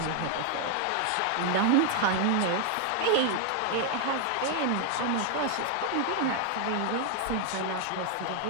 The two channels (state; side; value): different; both; correlation 0.00